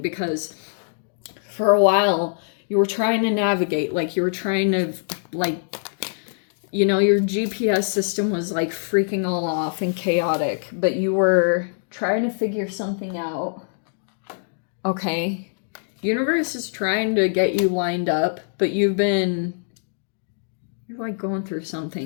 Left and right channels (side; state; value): right; silent; digital silence